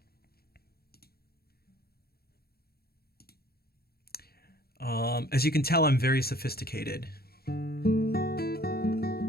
As you can tell, I'm very sophisticated.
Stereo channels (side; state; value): right; late; 0.45 ms